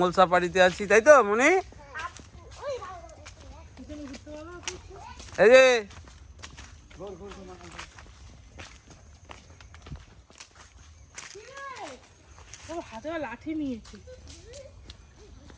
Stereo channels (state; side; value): identical; both; correlation 1.00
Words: সাফারিতে আছি, তাই তো মনি? এই যে হাতে লাঠি নিয়েছি।